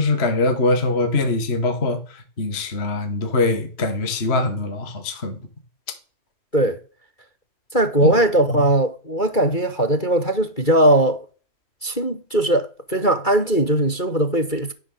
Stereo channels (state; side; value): late; right; 2.3 ms